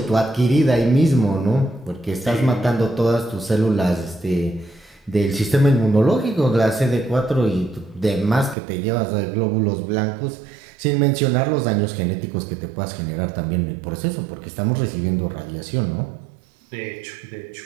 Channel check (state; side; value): drops out; left; at 8.6 s